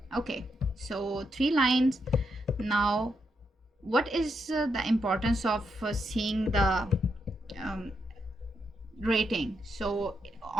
Okay, so 3 lines. Now what is the importance of seeing the um, rating? So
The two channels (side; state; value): both; normal; correlation 0.81